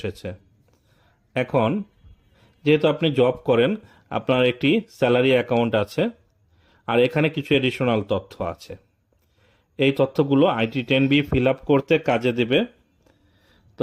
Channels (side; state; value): both; identical; correlation 1.00